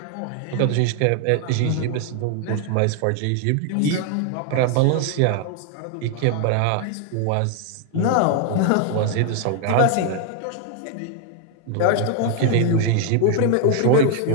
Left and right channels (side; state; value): both; different; correlation 0.00